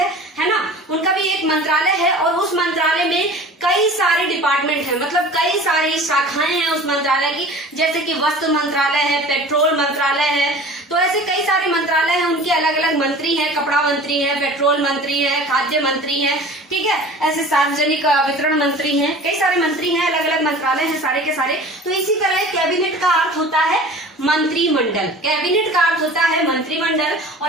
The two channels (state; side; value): normal; both; correlation 0.41